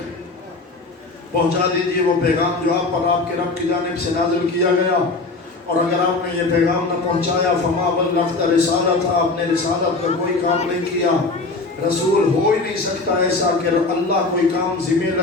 پہنچا دیجئے وہ پیغام جو آپ پر آپ کے رب کی جانب سے نازل کیا گیا، اور اگر آپ نے یہ پیغام نہ پہنچایا فما بلغت رسالت، آپ نے رسالت کا کوئی کام نہیں کیا۔ رسول ہو ہی نہیں سکتا ایسا کہ اللہ کوئی کام ذمہ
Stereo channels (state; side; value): quieter; right; 3.5 dB